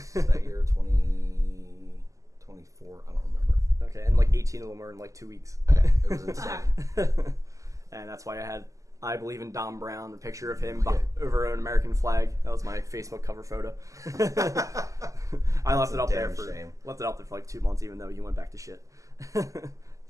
that year. 20, 24. I don't remember. Okay, and like 18 of them were in like 2 weeks. Yeah, it was insane. And that's why I had I Believe in Dom Brown, a picture of him over an American flag. That was my Facebook cover photo. I left it up there for like 2 months, even though he went back to shit.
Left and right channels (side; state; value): left; late; 0.16 ms